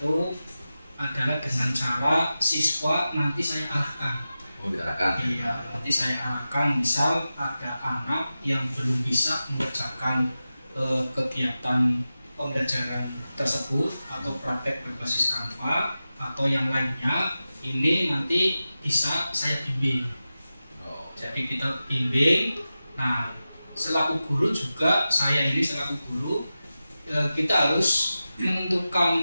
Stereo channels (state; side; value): inverted; both; correlation -0.94